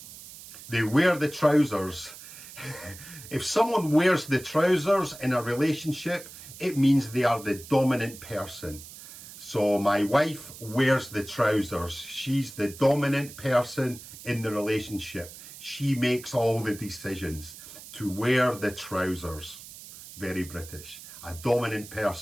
They wear the trousers. If someone wears the trousers in a relationship, it means they are the dominant person. So my wife wears the trousers. She's the dominant person in the relationship. She makes all the decisions. To wear the trousers. Very British. A dominant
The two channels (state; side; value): noise; right; hiss, 16 dB below the sound